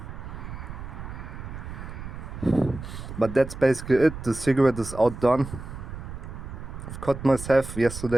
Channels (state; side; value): noise; right; rumble, 10 dB below the sound